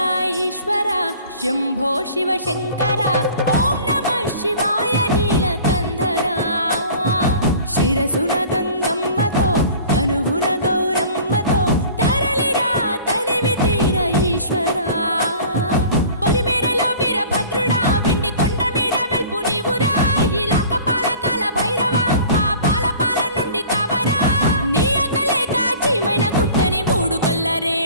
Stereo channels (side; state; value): both; inverted; correlation -0.45